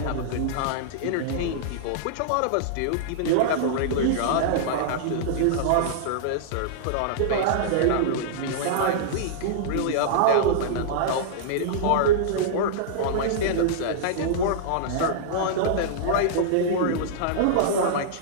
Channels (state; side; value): different; both; correlation -0.02